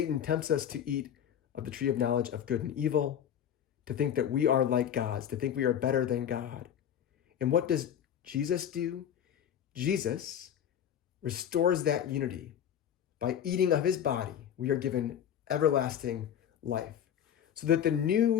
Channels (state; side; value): quieter; right; 9.5 dB